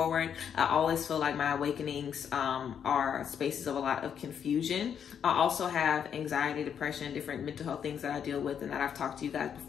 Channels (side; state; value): right; quieter; 8.1 dB